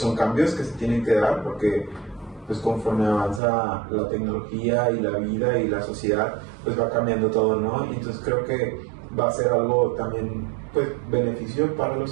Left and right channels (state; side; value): drops out; left; at 3.4 s